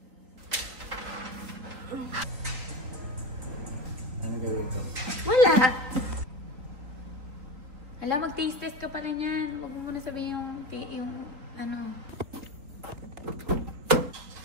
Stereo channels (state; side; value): late; left; 3.9 ms